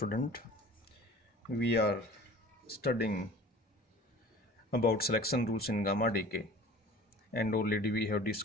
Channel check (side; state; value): both; normal; correlation 0.43